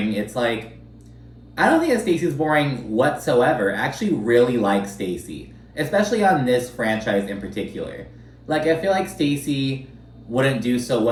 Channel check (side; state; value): both; identical; correlation 1.00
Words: it's like, I don't think that Stacy's boring whatsoever. I actually really like Stacy, especially on this franchise in particular. Like, I feel like Stacy wouldn't do so